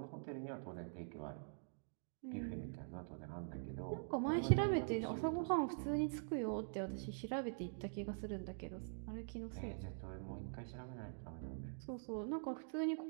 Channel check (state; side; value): silent; left; digital silence